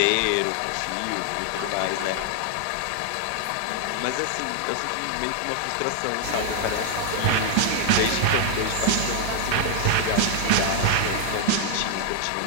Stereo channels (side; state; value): both; different; correlation 0.00